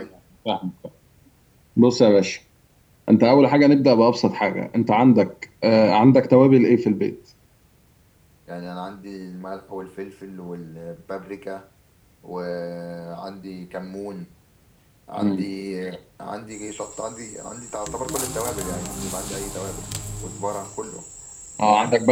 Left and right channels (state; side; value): identical; both; correlation 1.00